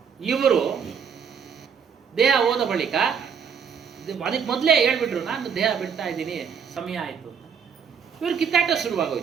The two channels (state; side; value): quieter; left; 6.8 dB